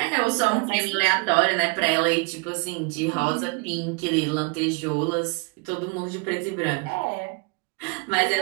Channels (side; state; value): left; quieter; 31.4 dB